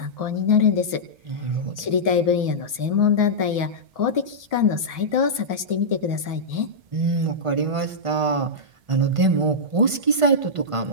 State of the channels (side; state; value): left; late; 1.5 ms